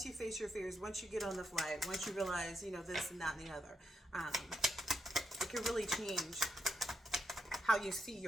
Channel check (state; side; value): normal; both; correlation 0.82